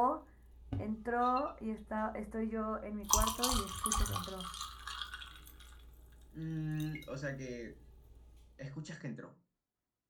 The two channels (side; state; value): both; identical; correlation 1.00